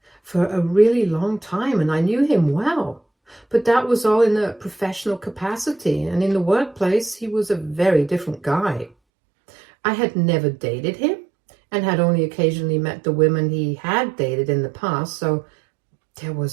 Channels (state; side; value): drops out; left; at 8.9 s